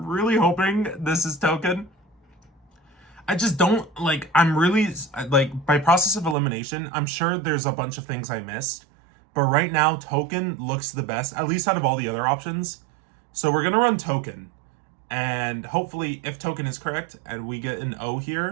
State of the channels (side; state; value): left; drops out; at 6.4 s